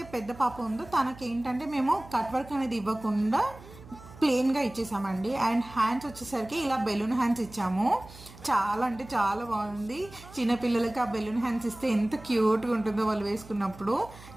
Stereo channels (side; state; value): right; noise; hum, 19 dB below the sound